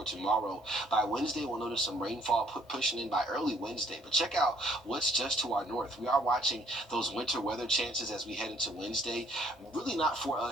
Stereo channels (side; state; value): both; normal; correlation 0.62